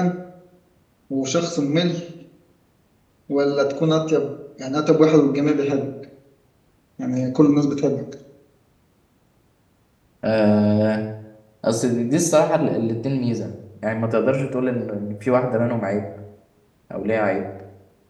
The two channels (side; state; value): both; identical; correlation 1.00